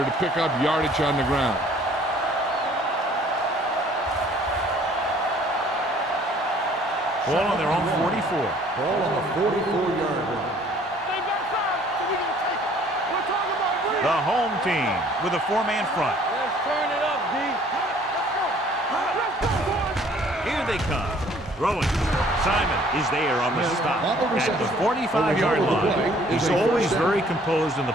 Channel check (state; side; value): normal; both; correlation 0.57